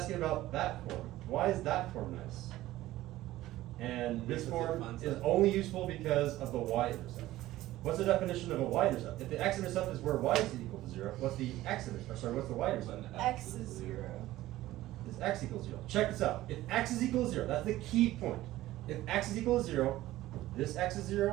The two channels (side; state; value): left; quieter; 15.8 dB